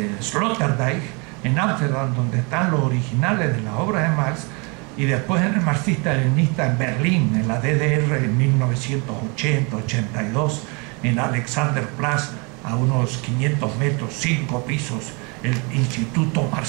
Sloterdijk, en Ámsterdam, donde están los originales de las obras de Marx, y después en el marxista-leninista en Berlín, en la DDR, en 1980-82, en Alexanderplatz, a unos 500 metros, 5 pisos, el Instituto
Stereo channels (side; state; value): left; quieter; 31.3 dB